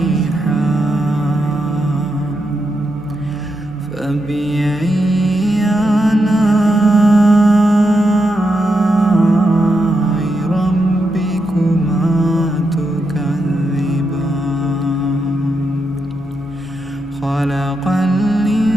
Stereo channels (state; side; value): normal; both; correlation 0.84